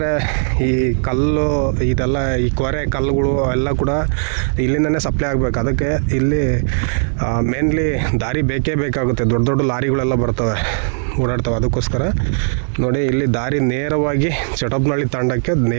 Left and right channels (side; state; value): left; silent; digital silence